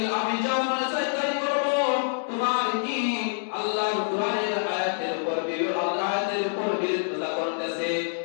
আমি যা মনে চাই তাই করব, তোমার কি আল্লাহর কোরআনের আয়াতের উপর বিরোধিতা করতেছে,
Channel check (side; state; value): right; silent; 61 dB below the other